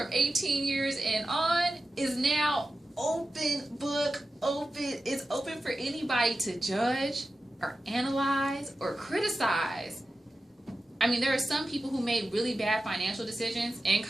18 years and on is now open book, open. It's open for anybody to judge or analyze or criticize. I mean, there are some people who made really bad financial decisions in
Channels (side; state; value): both; normal; correlation 0.93